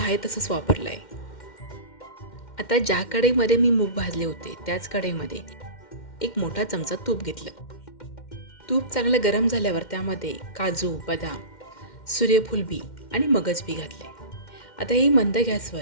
आहे तसंच वापरलं आहे. आता ज्या कढईमध्ये मी मूग भाजले होते त्याच कढईमध्ये एक मोठा चमचा तूप घेतलं. तूप चांगलं गरम झाल्यावर त्यामध्ये काजू, बदाम, सूर्यफूल बी आणि मगज बी घातले. आता ही मंद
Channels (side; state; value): right; late; 2.1 ms